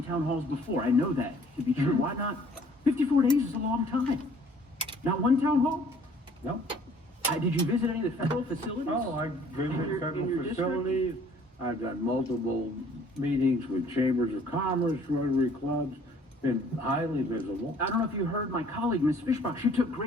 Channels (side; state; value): both; normal; correlation 0.56